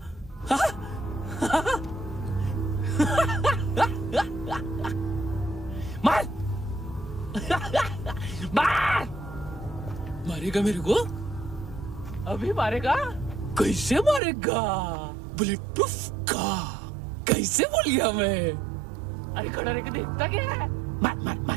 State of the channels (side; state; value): left; drops out; at 14.2 s